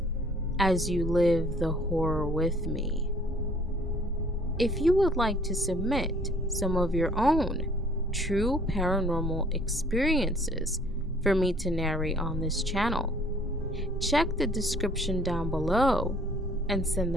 as you live the horror with me. If you would like to submit some of your own true paranormal experiences for me to narrate on this channel, check the description down below and send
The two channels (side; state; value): both; normal; correlation 0.57